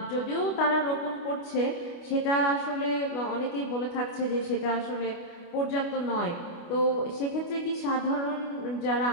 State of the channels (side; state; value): right; late; 29 ms